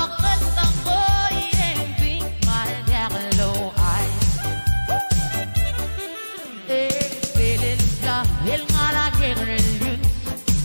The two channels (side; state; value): both; inverted; correlation -1.00